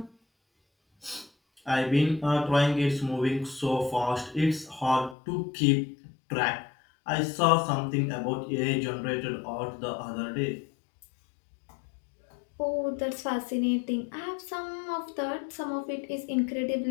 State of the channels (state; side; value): drops out; right; at 5.2 s